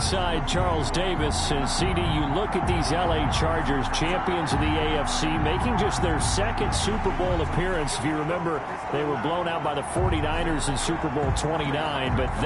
Charles Davis. And CD, you look at these LA Chargers, champions of the AFC, making just their second Super Bowl appearance. If you remember, they were blown out by the 49ers in Super Bowl 29, but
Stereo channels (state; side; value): identical; both; correlation 1.00